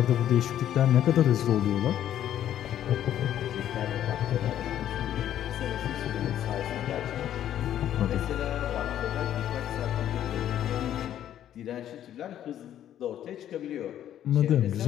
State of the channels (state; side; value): quieter; right; 11.1 dB